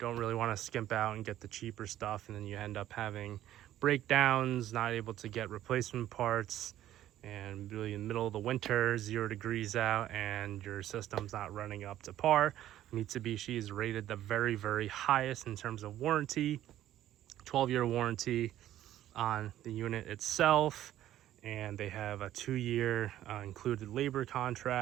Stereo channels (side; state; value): left; quieter; 12.8 dB